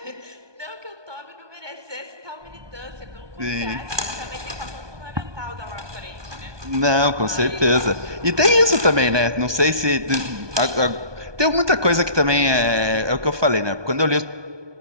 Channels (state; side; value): late; left; 1.2 ms